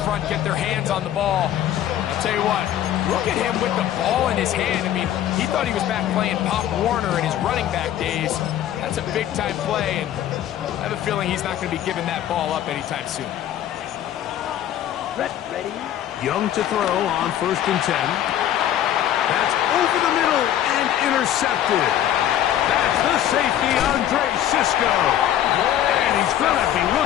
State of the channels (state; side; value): quieter; right; 11.5 dB